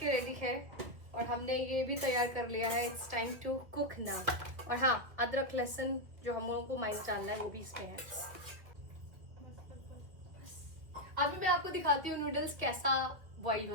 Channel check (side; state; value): left; late; 2.0 ms